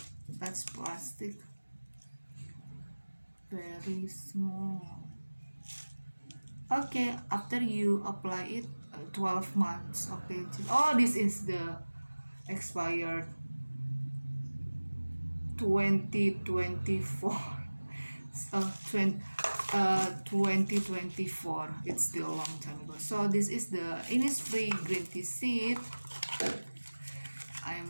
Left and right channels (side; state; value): both; inverted; correlation -1.00